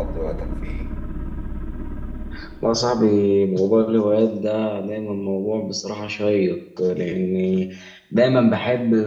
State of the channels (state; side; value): identical; both; correlation 1.00